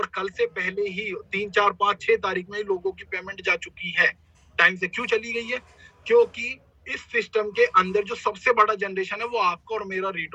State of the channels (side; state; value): both; identical; correlation 1.00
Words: कल से पहले ही 3, 4, 5, 6 तारीख में ही लोगों की पेमेंट जा चुकी है। टाइम से क्यों चली गई है? क्योंकि इस सिस्टम के अंदर जो सबसे बड़ा जनरेशन है वो आपका और मेरा